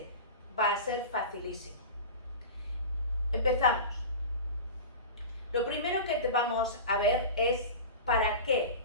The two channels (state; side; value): inverted; both; correlation -0.30